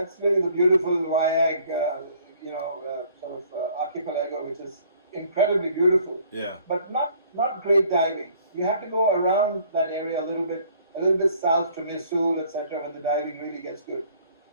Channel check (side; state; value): both; inverted; correlation -0.58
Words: really the beautiful Wayag, sort of archipelago, which is incredibly beautiful. Yeah. But not great diving. You have to go around that area a little bit south to Misul, etc., when the diving really gets good.